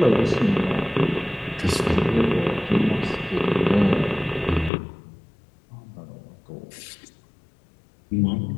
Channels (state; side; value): drops out; right; at 4.7 s